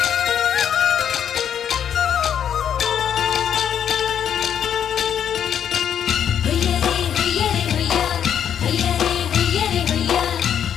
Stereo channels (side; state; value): right; quieter; 8.9 dB